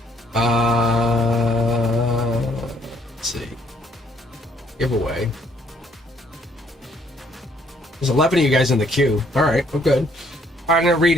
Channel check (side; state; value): both; normal; correlation 0.67